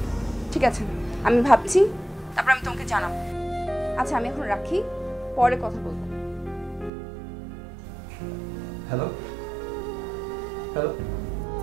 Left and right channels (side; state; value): left; drops out; at 6.9 s